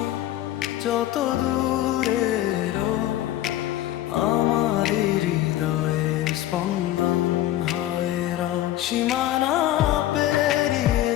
যত দূরেরও আমার হৃদয়ের স্পন্দন হয় রও। সীমানা পেরিয়ে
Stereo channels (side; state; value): right; quieter; 13.8 dB